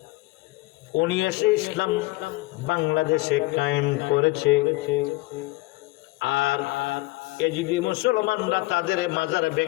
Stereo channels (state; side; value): quieter; right; 21.9 dB